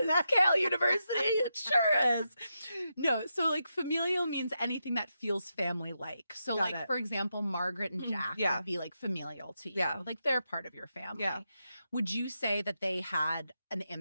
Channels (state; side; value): inverted; both; correlation -0.86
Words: is. Kale University. It sure is. No, so like familial means anything that feels family-like. So Got like, it. for example, Margaret and Jack Yeah. would be like familial to you. Yeah. Like they're part of your family. Yeah. Would you say that they had an